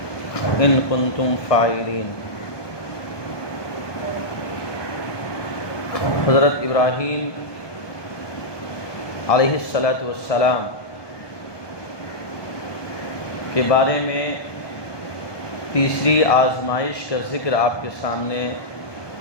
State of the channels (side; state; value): right; late; 1.2 ms